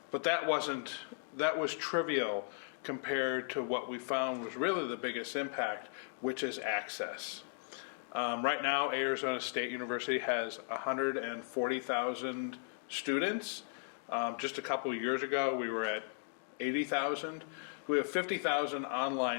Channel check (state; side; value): silent; right; digital silence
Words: But that was trivial compared to what we found was really the biggest impact, which is access. Right now, Arizona State University has 140,000 students. Just a couple of years ago, we were at 80,000. We have 50,000